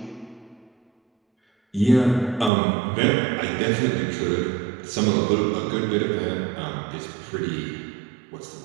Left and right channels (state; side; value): drops out; left; at 2.5 s